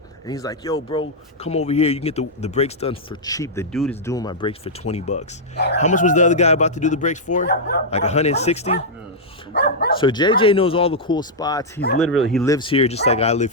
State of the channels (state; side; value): normal; both; correlation -0.07